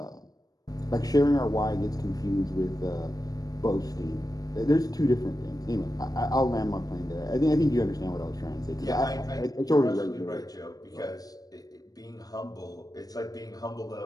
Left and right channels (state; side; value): late; right; 0.18 ms